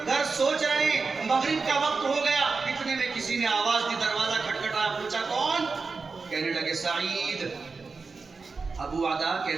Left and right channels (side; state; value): left; quieter; 4.4 dB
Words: گھر سوچ رہے ہیں، مغرب کا وقت ہو گیا۔ اتنے میں کسی نے آواز دی، دروازہ کھٹکھٹایا، پوچھا کون؟ کہنے لگے سعید۔ ابو عدا